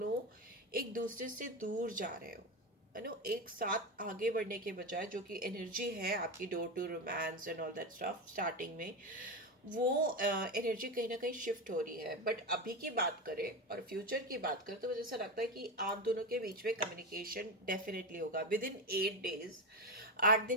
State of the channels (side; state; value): both; normal; correlation 0.16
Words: एक दूसरे से दूर जा रहे हो। एक साथ आगे बढ़ने के बजाय जो कि एनर्जी है आपकी door to romance and all that stuff starting में, वो एनर्जी कहीं ना कहीं शिफ्ट हो रही है। बट अभी की बात करें और फ्यूचर की बात करें तो मुझे ऐसा लगता है कि आप दोनों के बीच में कम्युनिकेशन डेफिनेटली होगा विद इन 8 डेज। 8